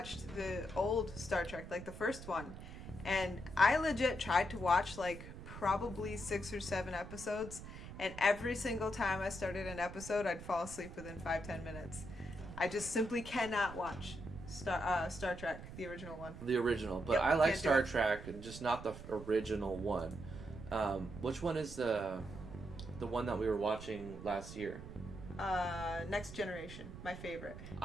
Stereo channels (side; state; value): right; noise; rumble, 12 dB below the sound